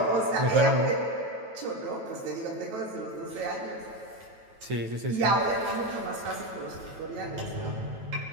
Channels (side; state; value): left; late; 9.2 ms